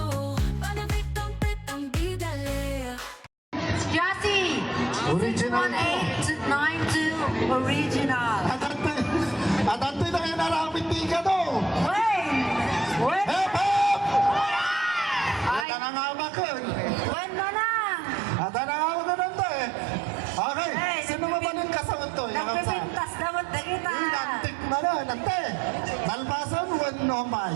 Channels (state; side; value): drops out; left; at 15.7 s